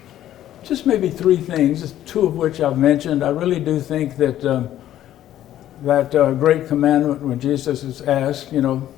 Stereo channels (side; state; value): right; quieter; 12.4 dB